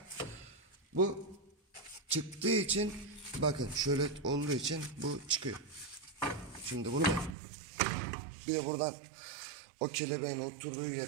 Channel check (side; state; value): left; drops out; at 7.4 s